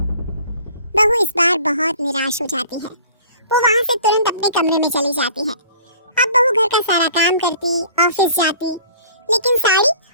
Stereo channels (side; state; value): both; inverted; correlation -0.50